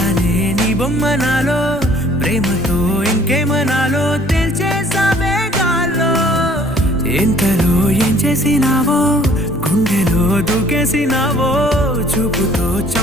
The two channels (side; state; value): both; normal; correlation 0.56